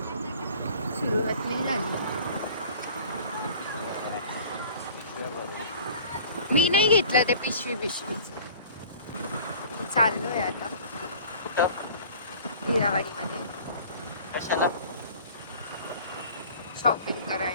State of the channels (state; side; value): inverted; both; correlation -0.46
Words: सुरुवात नाही झाली. मी नाही घेतलं ते पिशवीच. चाललोय आता कुठं? हिरावाडीमध्ये कशाला? शॉपिंग